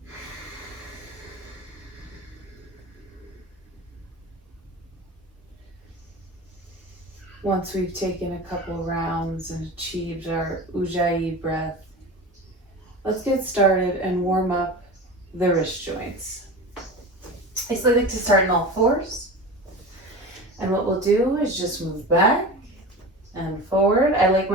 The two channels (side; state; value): both; normal; correlation 0.31